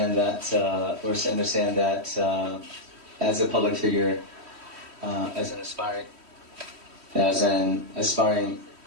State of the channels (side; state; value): left; late; 3.1 ms